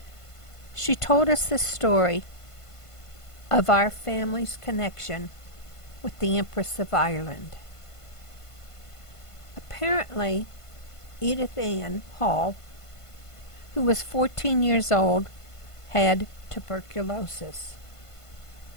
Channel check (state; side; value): late; right; 1.5 ms